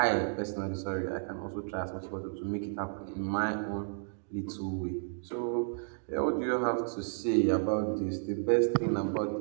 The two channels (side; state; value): left; silent; digital silence